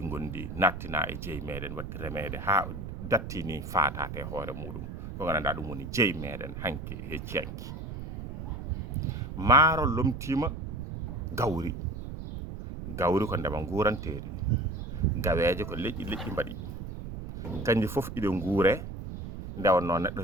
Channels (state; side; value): noise; right; rumble, 8 dB below the sound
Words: ngondi nattinaa e jeyi meeɗen watti remeede haa dattii ni faataate hoore muɗum, ko nganndanɗaa ɗum woni jeyi meeɗen hanki hecciyanki. Maaro lomtiima gawri. Gawri ko ndema nguuranteeri, gaweeje ko leƴƴi mbaɗi, kanji fof iɗe nguuree, nde wonnoo neɗɗo